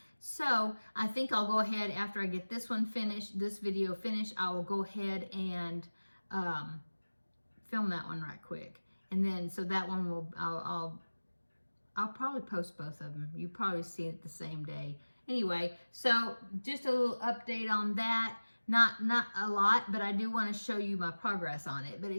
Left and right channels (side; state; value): both; inverted; correlation -1.00